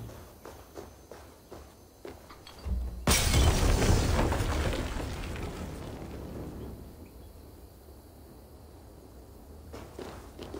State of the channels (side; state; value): both; identical; correlation 1.00